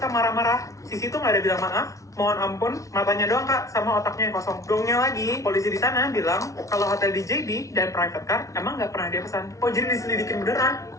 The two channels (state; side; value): late; right; 0.16 ms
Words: marah-marah, Sisi tuh nggak ada bilang maaf, mohon ampun, matanya doang kak, sama otaknya yang kosong. Gongnya lagi, polisi di sana bilang kalau hotel di JB dan private car emang nggak pernah dia pesan. Oh jadi diselidikin beneran?